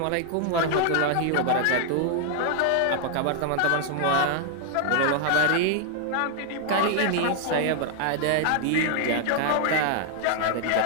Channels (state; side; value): different; both; correlation 0.00